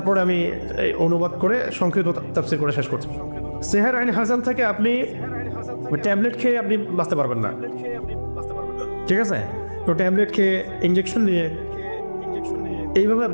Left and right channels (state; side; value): inverted; both; correlation -1.00